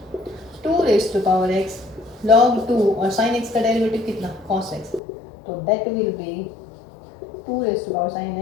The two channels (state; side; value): drops out; right; at 5.0 s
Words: 2 raise to power x log 2, और साइन x का डेरिवेटिव कितना cos x, तो that will be 2 raise to power